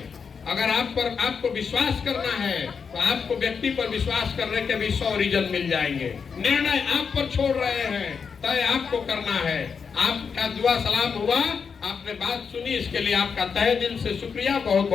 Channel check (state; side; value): quieter; right; 6.0 dB